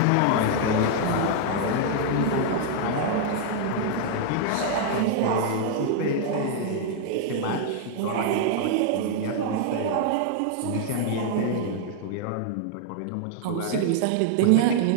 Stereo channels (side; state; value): both; different; correlation -0.01